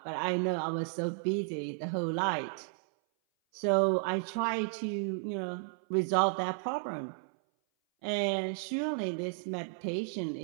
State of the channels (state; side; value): silent; left; 56 dB below the other